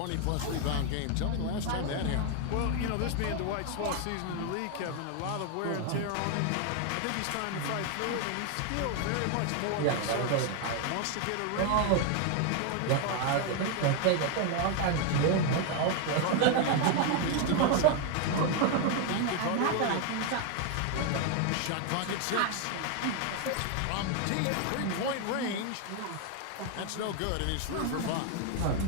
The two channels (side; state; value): both; different; correlation 0.01